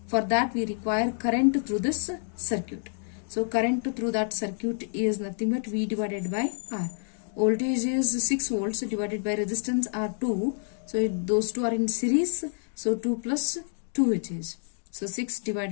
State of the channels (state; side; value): silent; right; digital silence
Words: For that we require current through this circuit. So current through that circuit is nothing but V divided by R. Voltage is 6 volts divided by resistance are 2. So those two are in series. So 2 plus 2 it is. So 6